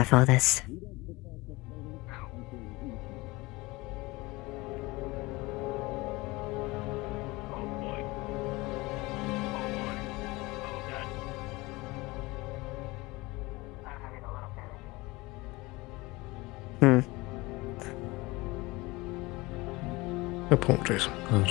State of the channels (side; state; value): right; quieter; 22.3 dB